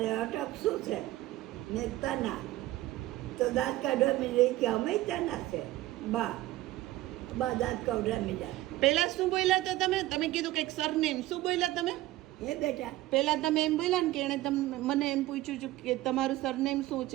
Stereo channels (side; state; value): left; quieter; 16.4 dB